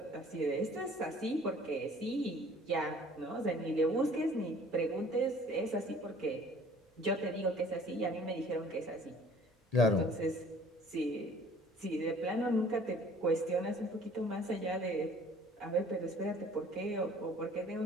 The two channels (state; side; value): normal; both; correlation 0.52